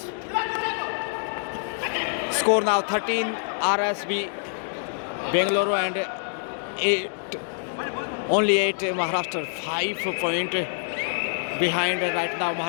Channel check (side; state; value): right; silent; digital silence